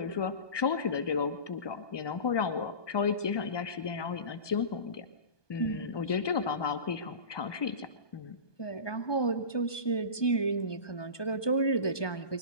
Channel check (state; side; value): late; right; 1.2 ms